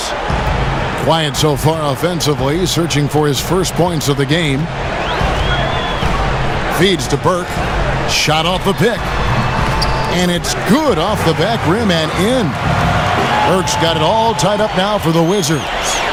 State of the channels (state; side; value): identical; both; correlation 1.00